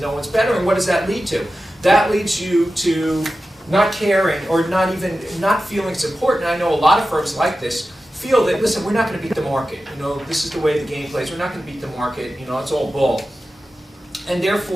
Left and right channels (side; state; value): both; normal; correlation 0.93